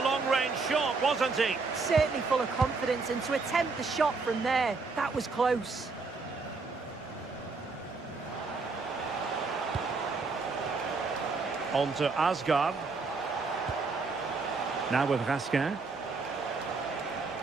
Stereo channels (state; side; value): quieter; left; 4.2 dB